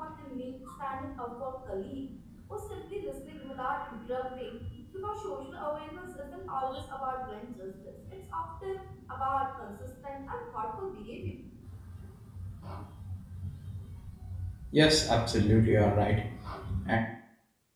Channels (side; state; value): both; identical; correlation 1.00